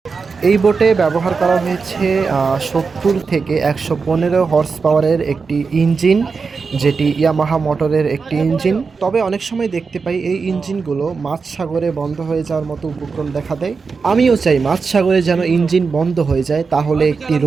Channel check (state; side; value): quieter; left; 4.9 dB